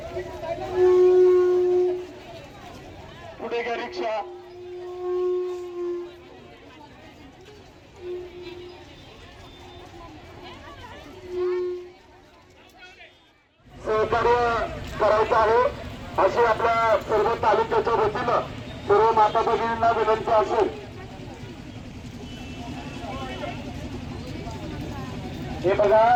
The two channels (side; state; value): both; identical; correlation 1.00